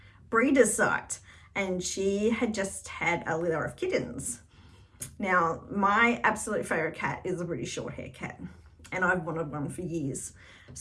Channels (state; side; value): identical; both; correlation 1.00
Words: breeder's site, and she had just had a litter of kittens. Now, my absolute favourite cat is a British Shorthair cat, and I've wanted one for years.